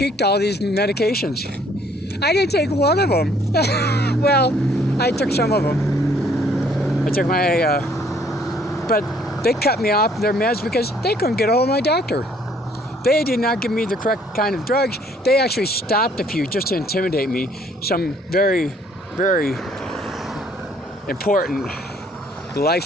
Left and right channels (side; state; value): both; normal; correlation 0.62